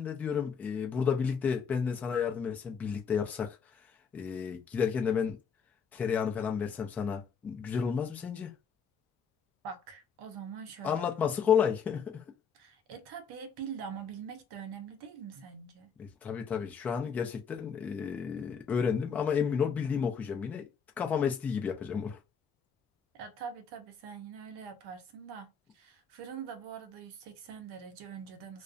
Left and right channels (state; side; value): quieter; right; 6.1 dB